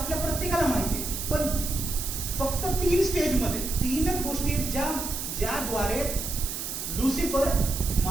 प्रत्येकाला माहिती आहे. पण फक्त 3 स्टेजमध्ये 3च गोष्टी ज्याद्वारे लुसिफर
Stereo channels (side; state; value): right; noise; hiss, 5 dB below the sound